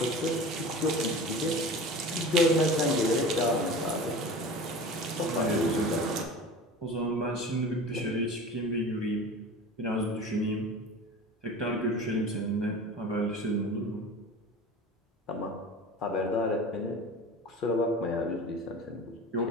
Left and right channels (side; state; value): both; normal; correlation 0.36